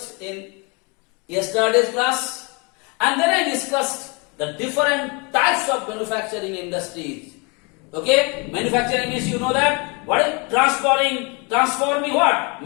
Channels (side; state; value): right; quieter; 31.0 dB